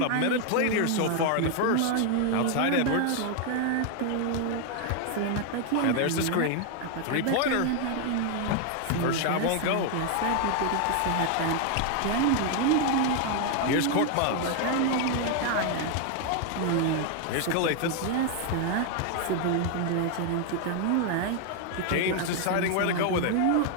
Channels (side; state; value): both; different; correlation 0.00